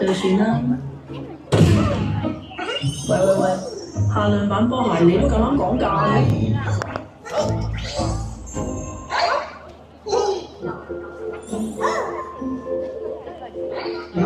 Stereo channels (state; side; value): identical; both; correlation 1.00